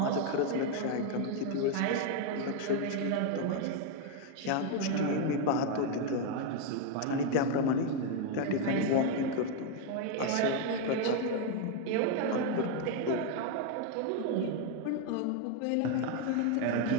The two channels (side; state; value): both; different; correlation 0.01